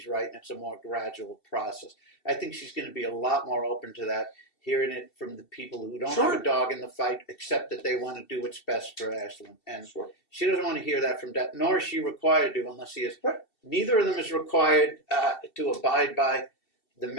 right and it's a more gradual process. I think she's going to be a lot more open to that, hearing it from the people who don't have a dog in the fight, except that they want to do what's best for Ashlyn. And she doesn't want to hear that from Dad, nor is she required to unless he is. Neither of them is required to abide by the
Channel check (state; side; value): late; right; 2.7 ms